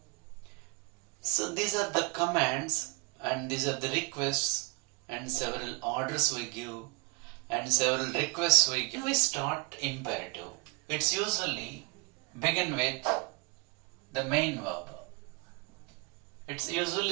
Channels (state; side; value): quieter; left; 28.0 dB